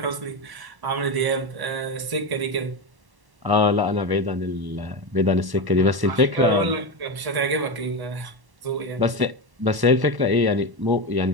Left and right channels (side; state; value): left; late; 1.1 ms